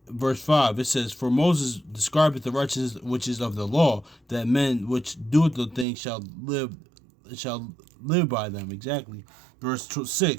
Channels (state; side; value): drops out; left; at 5.9 s